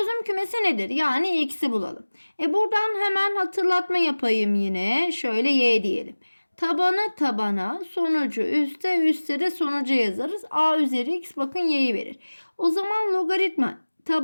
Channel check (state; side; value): inverted; both; correlation -1.00